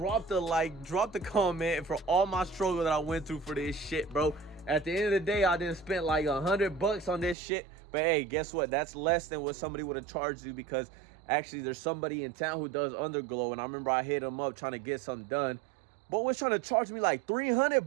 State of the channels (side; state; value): left; drops out; at 7.4 s